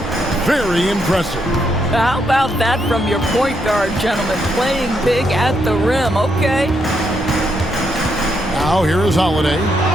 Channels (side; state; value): both; normal; correlation 0.78